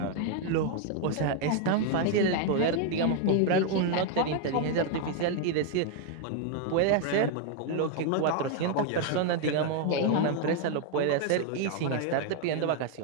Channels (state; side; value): different; both; correlation 0.00